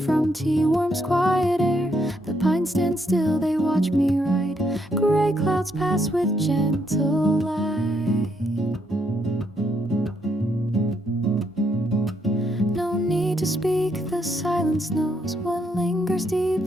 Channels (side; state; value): both; normal; correlation 0.75